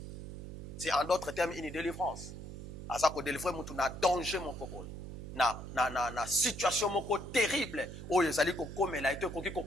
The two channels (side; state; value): right; noise; hum, 10 dB below the sound